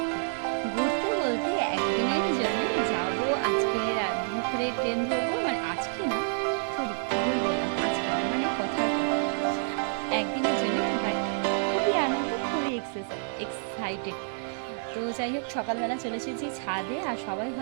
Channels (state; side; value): silent; left; 59 dB below the other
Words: ঘুরতে বলতে একদিনের জন্য যাব। আজকে দুপুরে ট্রেন ধরবো, মানে আজকে না, সরি ভুল বললাম, আজকে না, মানে কথার কথা, একদিনের জন্য। বাট খুবই আনন্দ, খুবই এক্সাইটেড। তো যাই হোক, সকালবেলা চলে এসেছি ছাদে। আর সবাই